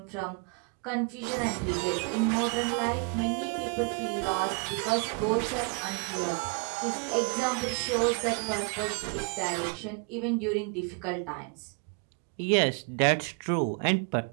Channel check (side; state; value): left; quieter; 35.4 dB